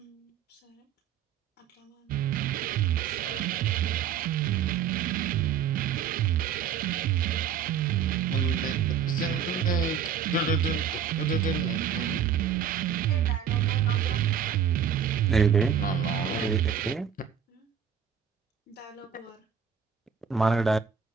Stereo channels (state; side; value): quieter; left; 7.8 dB